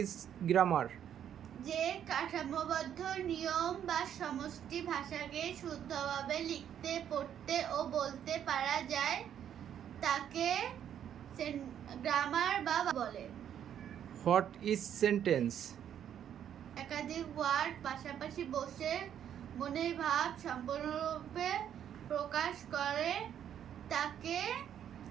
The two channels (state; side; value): quieter; left; 9.6 dB